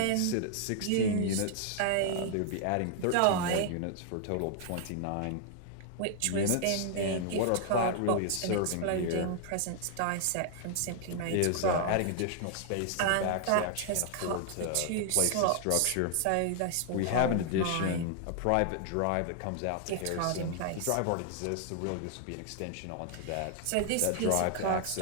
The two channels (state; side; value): different; both; correlation 0.00